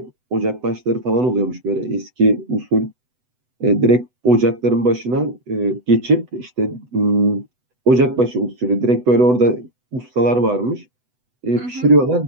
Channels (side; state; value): left; late; 8.0 ms